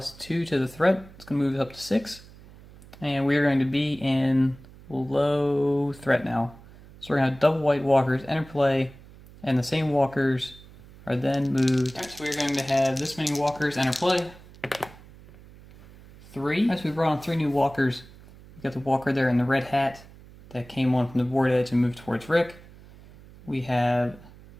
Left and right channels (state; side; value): noise; right; hum, 21 dB below the sound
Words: to the threat. It's going to move it up to 6. And we're going to be in low threat now. So we're going to have double white walkers enter play, and the same walkers are then moved. Alright, so we're going to have this many walkers enter play. 3. As we brought on 3 new walkers. We've got the walker there in the red hat that came on from the board edge and moved towards Rick. We have